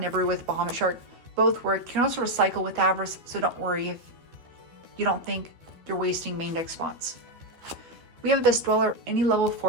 Nibiru with Bahamut Shark. Both work. You can also recycle with Avarice, so don't worry if you don't think you're wasting main deck spots. We have Abyss Dweller, any level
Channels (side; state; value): left; late; 12 ms